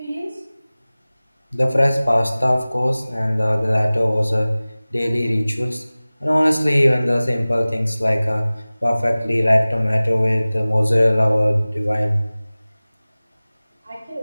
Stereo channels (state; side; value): inverted; both; correlation -0.99